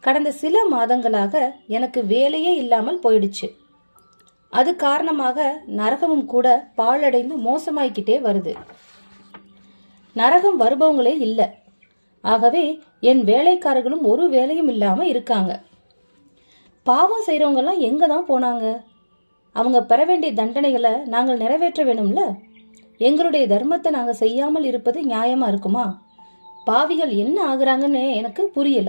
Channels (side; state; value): both; inverted; correlation -1.00